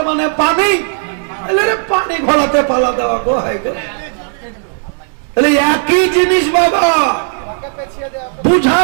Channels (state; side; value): silent; left; digital silence